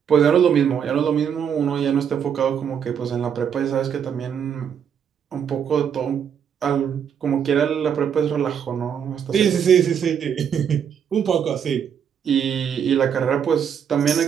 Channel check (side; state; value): left; quieter; 8.0 dB